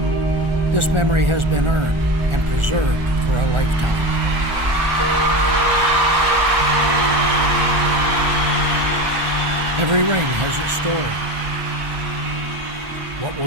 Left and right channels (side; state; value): left; late; 1.4 ms